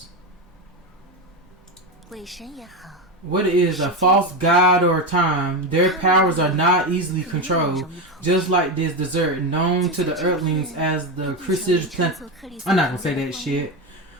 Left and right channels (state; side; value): normal; both; correlation 0.15